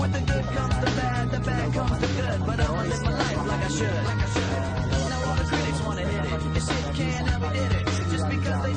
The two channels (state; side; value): identical; both; correlation 1.00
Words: berkumpul pada saat ini. Penyergapan teroris yang selama ini lewat televisi maupun surat kabar itu terjadi sampai 9 jam